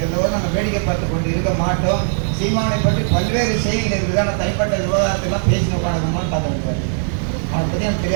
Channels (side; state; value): left; silent; digital silence